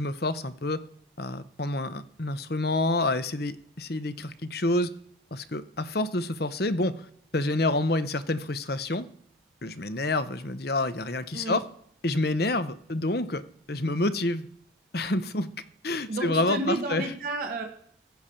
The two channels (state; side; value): normal; both; correlation 0.31